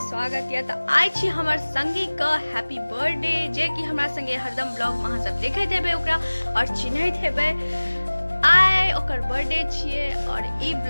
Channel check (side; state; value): both; inverted; correlation -1.00